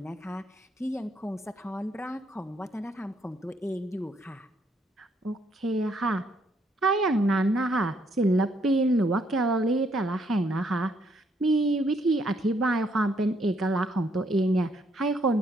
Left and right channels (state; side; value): normal; both; correlation 0.71